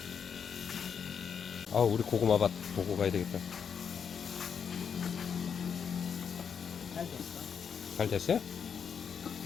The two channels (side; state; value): right; quieter; 7.0 dB